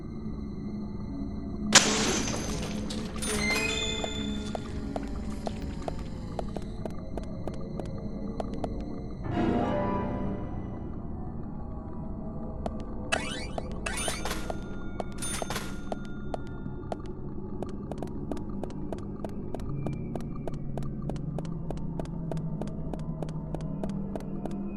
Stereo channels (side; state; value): both; identical; correlation 1.00